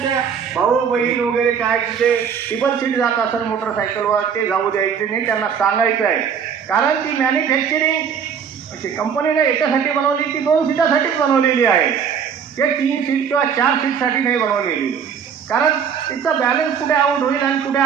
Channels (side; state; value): left; quieter; 7.2 dB